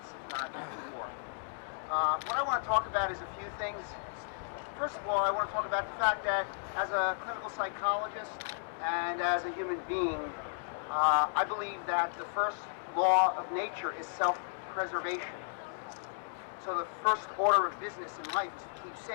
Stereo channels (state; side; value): silent; right; digital silence